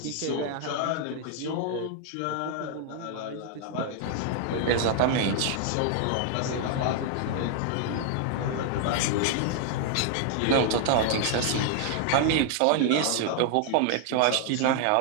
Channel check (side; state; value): both; different; correlation 0.00